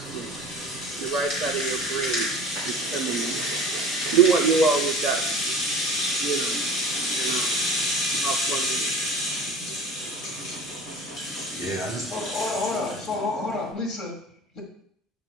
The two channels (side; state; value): both; normal; correlation 0.38